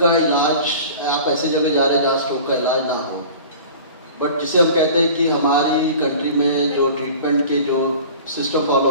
इलाज, आप ऐसी जगह जा रहे हैं जहाँ स्ट्रोक का इलाज ना हो, बट जिसे हम कहते हैं कि हमारी कंट्री में जो ट्रीटमेंट के जो सिस्टम फॉलो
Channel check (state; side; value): inverted; both; correlation -0.41